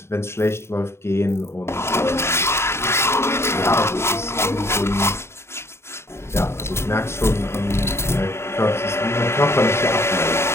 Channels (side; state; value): right; late; 0.12 ms